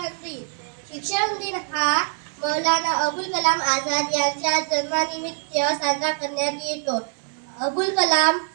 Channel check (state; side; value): silent; left; 63 dB below the other